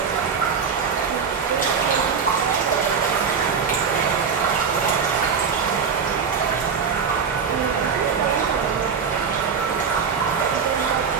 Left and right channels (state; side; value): quieter; left; 6.2 dB